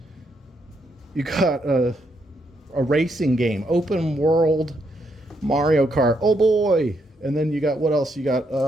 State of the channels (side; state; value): both; normal; correlation 0.77